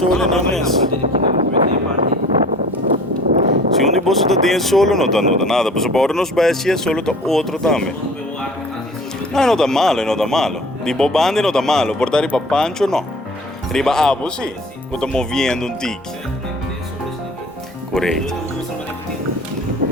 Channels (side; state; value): both; normal; correlation 0.46